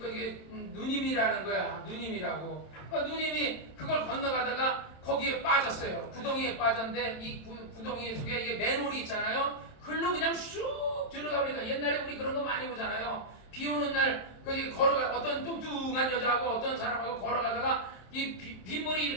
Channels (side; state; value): right; late; 27 ms